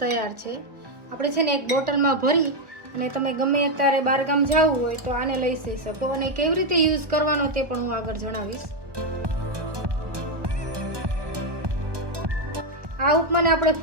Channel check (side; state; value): left; late; 1.2 ms